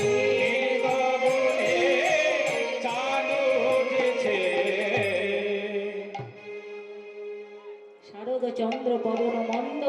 গগনে চাঁদ উঠেছে। শারদ চন্দ্র পবন মন্দ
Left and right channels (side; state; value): both; identical; correlation 1.00